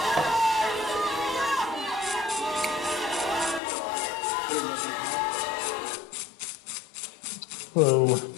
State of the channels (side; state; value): right; drops out; at 3.6 s